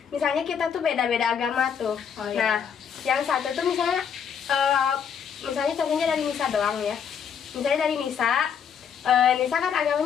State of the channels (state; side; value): quieter; right; 7.5 dB